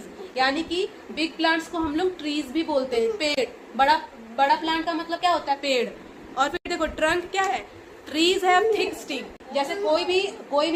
यानी कि बिग प्लांट्स को हम लोग ट्रीज भी बोलते हैं, पेड़। बड़ा बड़ा प्लांट का मतलब क्या होता है, पेड़। और फिर देखो ट्रंक क्या है, ट्रीज हैव थिक स्टिक। जैसे कोई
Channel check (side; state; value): both; identical; correlation 1.00